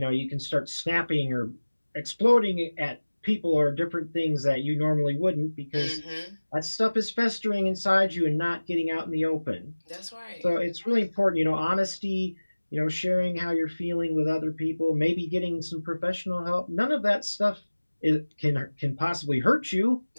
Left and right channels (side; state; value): both; inverted; correlation -1.00